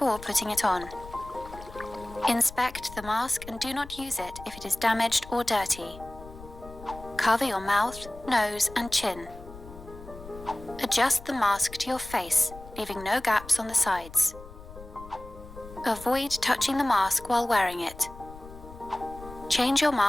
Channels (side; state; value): left; noise; rumble, 16 dB below the sound